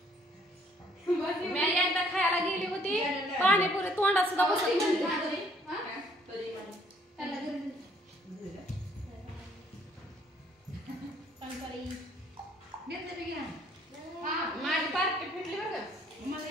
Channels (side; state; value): both; normal; correlation 0.63